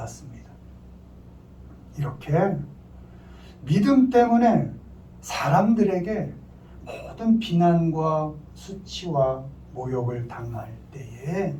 이렇게 믿음 때문에 사람들에게 모든 비난과 수치와 모욕을 당할 때에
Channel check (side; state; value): both; identical; correlation 1.00